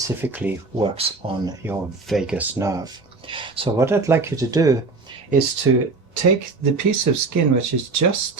works on your vagus nerve. So what I'd like you to do is to take the piece of skin which is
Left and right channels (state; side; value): quieter; left; 3.9 dB